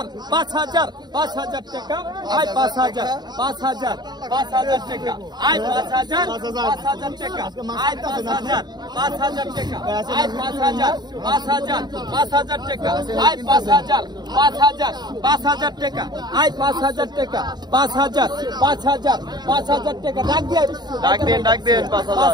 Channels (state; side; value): late; left; 0.20 ms